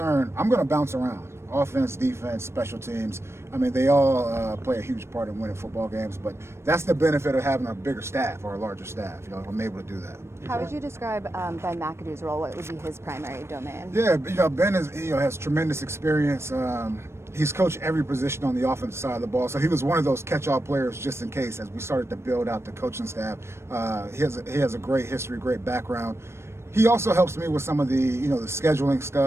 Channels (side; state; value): left; late; 0.13 ms